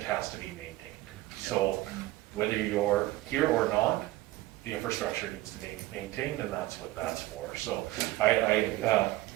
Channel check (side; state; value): left; quieter; 17.6 dB